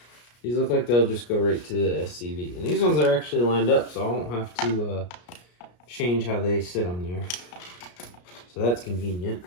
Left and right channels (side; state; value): right; late; 33 ms